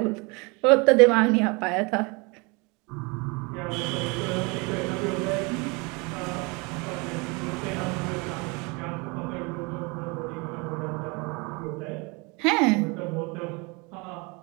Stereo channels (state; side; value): quieter; left; 28.6 dB